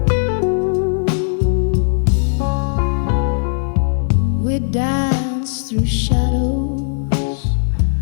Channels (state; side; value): silent; right; digital silence